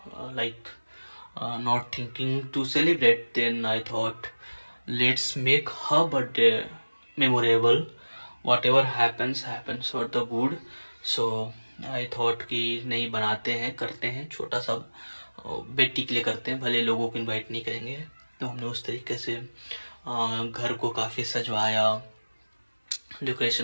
like not thinking to celebrate. Then I thought let's make her birthday memorable. Whatever happens for the good. So I thought कि नहीं, बनाते हैं, करते हैं, छोटा सा बेटी के लिए करते हैं, भले लोगों को इनवाइट नहीं करेंगे। तो हमने उस तरीके से घर को काफ़ी सजवाया,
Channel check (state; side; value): inverted; both; correlation -1.00